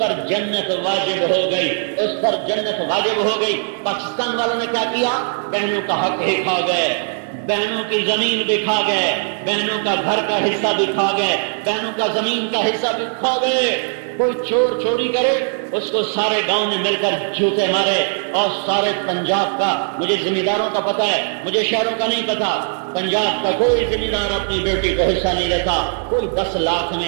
جنت واجب ہو گئی۔ پاکستان والوں نے کیا کیا؟ بہنوں کا حق ہی کھا گئے، بہنوں کی زمین بھی کھا گئے، بہنوں کا گھر کا حصہ بھی کھا گئے، بہنوں کا زمین کا حصہ بھی کھا گئے۔ کوئی چور چوری کرے اس کو سارے گاؤں نے مل کر جوتے مارے، اور سارے پنجاب کا، مجھے ذمہ داروں کا پتہ ہے، مجھے شہروں کا نہیں پتا، پنجاب کا کوئی ذمہ دار اپنی بیٹی کو حصہ نہیں لیتا۔ کوئی 10 لاکھ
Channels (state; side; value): silent; left; 63 dB below the other